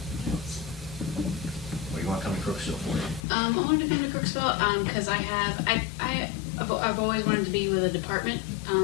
What do you want to come to Crooksville for? I wanted to come to Crooksville because I've always wanted to be with a department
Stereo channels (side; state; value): right; drops out; at 3.2 s